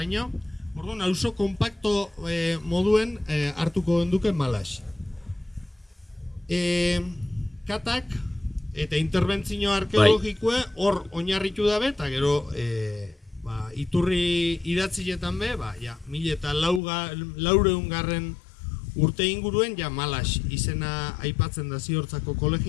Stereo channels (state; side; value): drops out; right; at 16.8 s